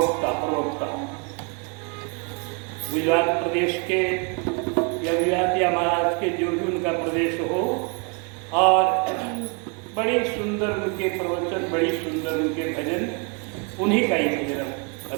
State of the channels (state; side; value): quieter; left; 34.6 dB